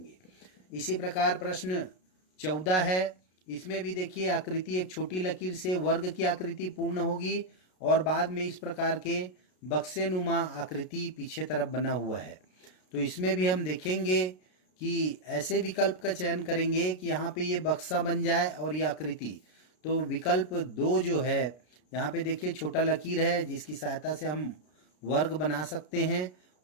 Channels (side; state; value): right; late; 33 ms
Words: इसी प्रकार प्रश्न 14 है। इसमें भी देखिए आकृति एक छोटी लकीर से वर्ग की आकृति पूर्ण होगी और बाद में इस प्रकार के बक्से नुमा आकृति पीछे तरफ बना हुआ है। तो इसमें भी हम देखेंगे कि ऐसे विकल्प का चयन करेंगे कि यहाँ पे ये बक्सा बन जाए और ये आकृति। तो विकल्प 2 जो है, यहाँ पे देखिए छोटा लकीर है जिसकी सहायता से हम वर्ग बना सकते हैं